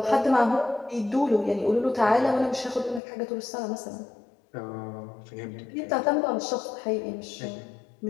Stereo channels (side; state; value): right; drops out; at 3.0 s